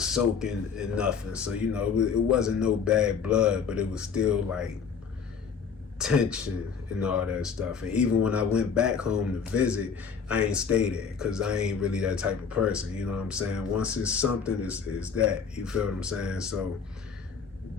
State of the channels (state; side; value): quieter; right; 6.2 dB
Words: in nothing. So, you know, it wasn't no bad blood, but it was still like tension and all that stuff. And even when I went back home to visit, I ain't stay there because I ain't really that type of person, you know what I'm saying? Once it's something, it's that, you feel what I'm saying? So,